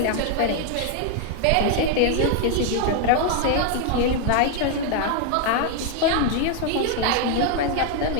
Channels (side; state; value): both; different; correlation 0.00